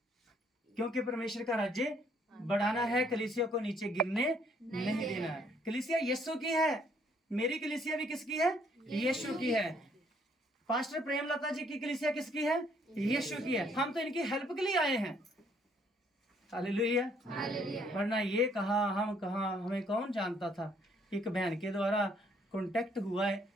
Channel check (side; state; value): both; normal; correlation 0.66